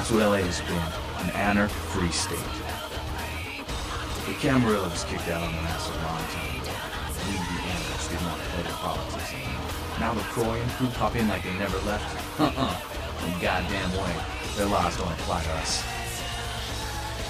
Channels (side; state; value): both; identical; correlation 1.00